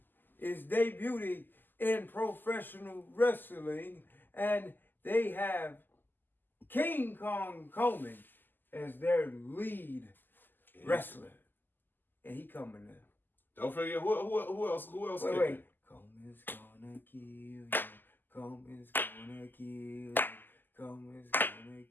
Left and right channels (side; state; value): right; late; 0.090 ms